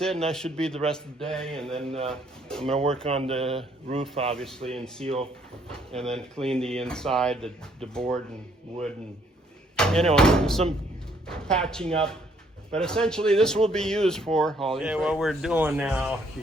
it, and that should be the rest of the day. And then I'm going to work on the roof, obviously, and seal, and then clean the inside, the board and wood, and anyway, some patching up. But essentially, this will be used for hauling. Okay, what we're doing now,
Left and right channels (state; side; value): normal; both; correlation 0.66